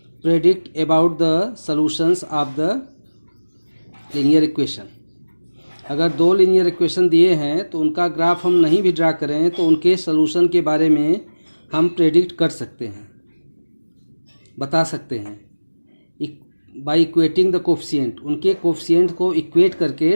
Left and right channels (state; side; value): inverted; both; correlation -1.00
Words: predict about the solutions of the linear equation. अगर 2 linear equation दिए हैं तो उनका graph हम नहीं भी draw करें तो उनके सॉल्यूशन के बारे में हम प्रेडिक्ट कर सकते हैं, बता सकते हैं बाय इक्वेटिंग द कोफिशिएंट. उनके कोफिशिएंट को इक्वेट